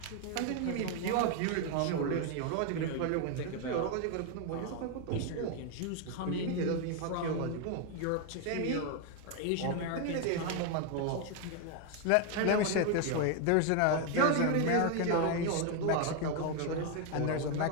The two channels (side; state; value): both; different; correlation 0.01